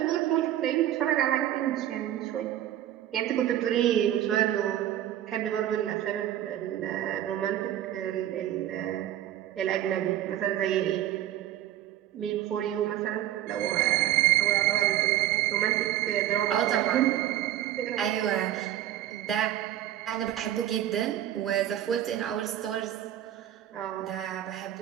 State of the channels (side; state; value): left; quieter; 12.4 dB